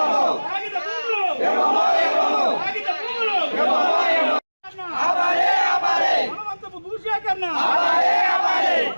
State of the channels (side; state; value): both; inverted; correlation -1.00